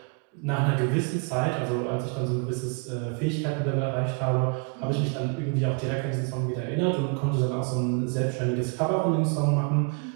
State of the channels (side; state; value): left; quieter; 35.4 dB